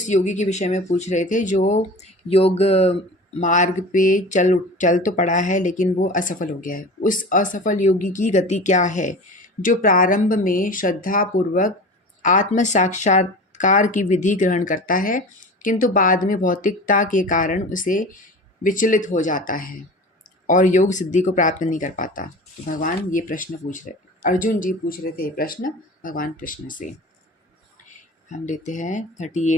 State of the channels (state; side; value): normal; both; correlation 0.35